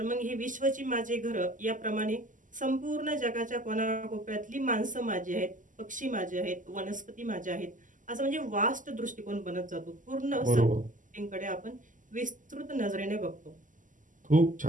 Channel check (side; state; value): left; late; 0.38 ms